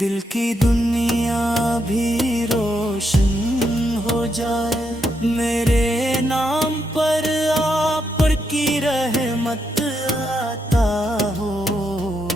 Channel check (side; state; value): both; normal; correlation 0.80